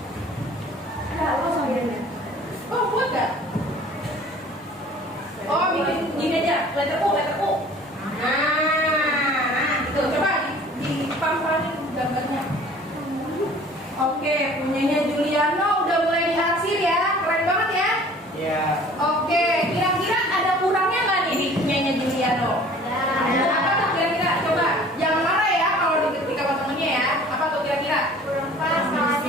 Oh, muat gak? Oh, bikin gini aja, letter U. Nah, gitu. Coba di pam-pamin gambarnya. Oke, punyanya Juliano udah mulai diarsir ya, keren banget ya. Ya. Oke, kira-kira ada kurangnya nggak nih di punyanya Juliano? Ada apa tuh kira-kira? Coba, jangan marah ya kalau diketik sama temennya ya. Apa tuh kira-kira? Kurang pas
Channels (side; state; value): both; normal; correlation 0.49